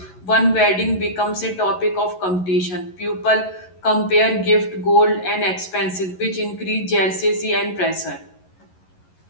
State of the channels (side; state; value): right; late; 11 ms